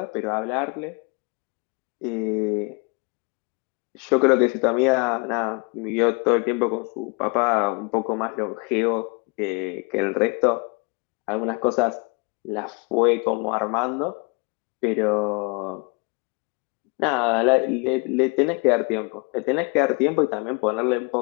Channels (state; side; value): quieter; right; 32.3 dB